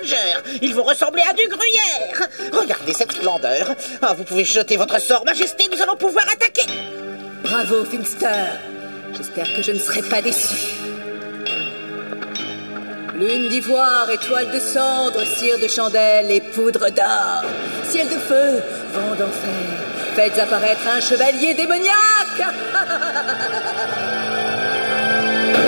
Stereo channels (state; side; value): inverted; both; correlation -1.00